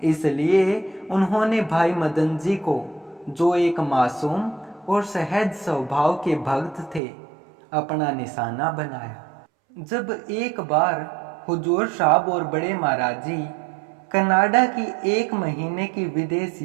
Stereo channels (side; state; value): left; drops out; at 7.0 s